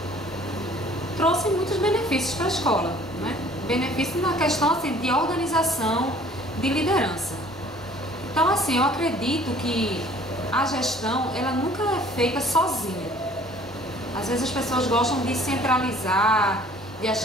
trouxe muitos benefícios para a escola, né? Benefícios na questão assim, de organização, de liderança. Então assim, eu acredito que a gestão ela nunca é feita sozinha. Às vezes as pessoas gostam de centralizar, de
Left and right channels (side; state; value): both; normal; correlation 0.53